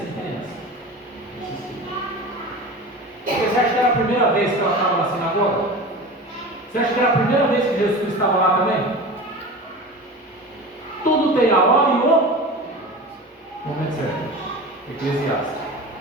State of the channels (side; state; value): both; normal; correlation 0.33